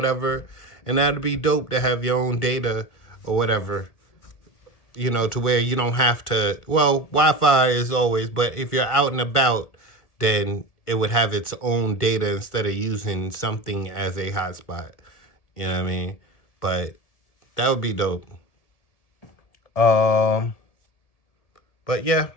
and that'd be dope to have your own data or whatever. To where you don't have to. Well, Wi-Fi is always, but if you're out and about, then it would have its own data instead of using something as a hotspot. You know what I mean? But that would be dope. Um, but yeah,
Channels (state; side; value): late; right; 1.7 ms